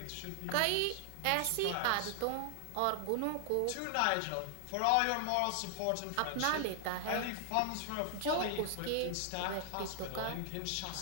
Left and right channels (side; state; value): both; different; correlation 0.00